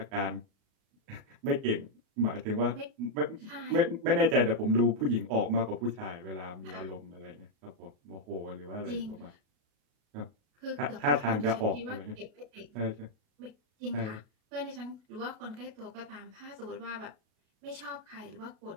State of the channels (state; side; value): late; left; 37 ms